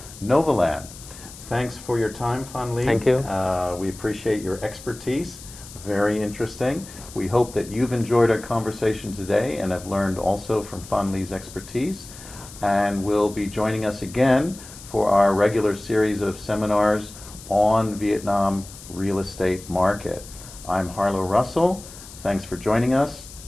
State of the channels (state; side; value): noise; left; hiss, 17 dB below the sound